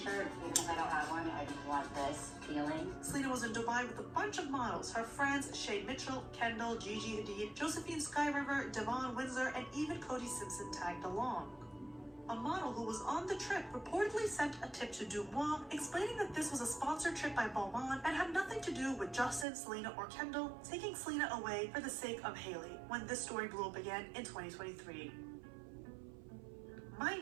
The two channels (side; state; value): left; drops out; at 19.5 s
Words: because I don't have one. I just want this feeling. Selena was in Dubai with a bunch of models, her friends Shay Mitchell, Kendall, Gigi Hadid, Josephine Skyriver, Devon Windsor, and even Cody Simpson tagged along. A model who was on the trip reportedly sent a tip to Dumois, explaining that this was a sponsored trip by Balmain and had nothing to do with Justin, Selena, or Kendall taking Selena away for the sake of Hailey, when this story blew up again in 2023.